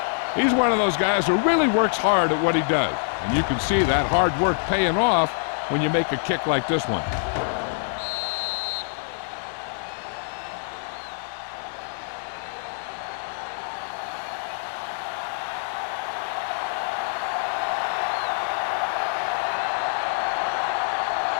He's one of those guys who really works hard at what he does. And you can see that hard work paying off when you make a kick like this one.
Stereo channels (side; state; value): right; silent; 62 dB below the other